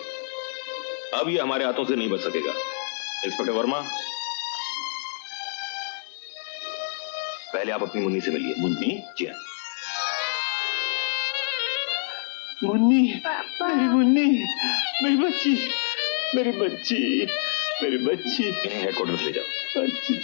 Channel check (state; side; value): silent; right; digital silence